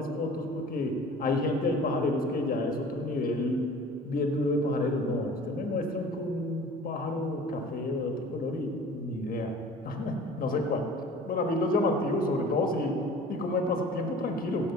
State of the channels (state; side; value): normal; both; correlation 0.44